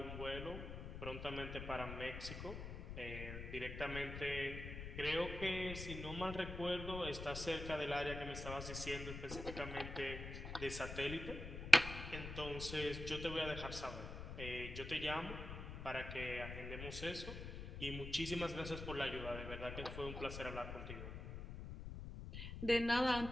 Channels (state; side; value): noise; left; rumble, 7 dB below the sound